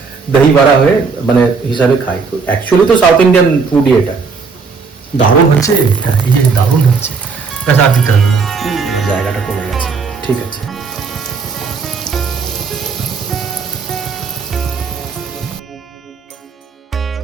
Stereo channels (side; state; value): left; quieter; 5.0 dB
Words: দহি বড়া হয়ে মানে হিসাবে খাই। অ্যাকচুয়ালি তো সাউথ ইন্ডিয়ান ফুডই এটা। দারুণ হচ্ছে এটা, এই যে দারুণ হচ্ছে। আর দিতে হবে, জায়গাটা কমে গেছে। ঠিক আছে,